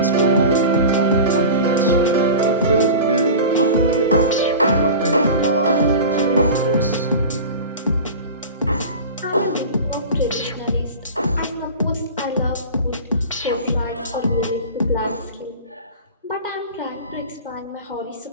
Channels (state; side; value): inverted; both; correlation -0.33